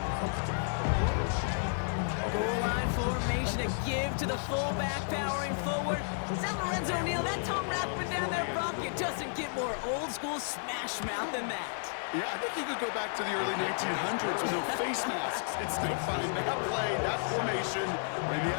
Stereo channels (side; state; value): right; silent; digital silence